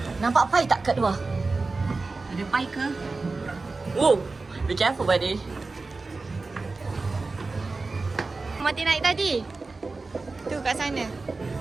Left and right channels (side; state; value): left; quieter; 3.7 dB